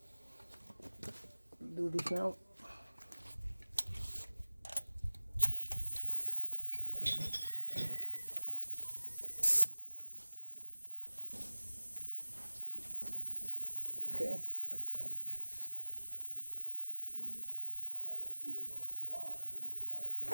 do this now.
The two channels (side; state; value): both; inverted; correlation -1.00